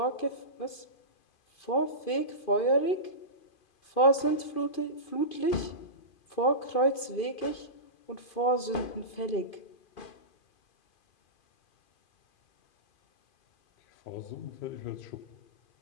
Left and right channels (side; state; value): right; late; 2.5 ms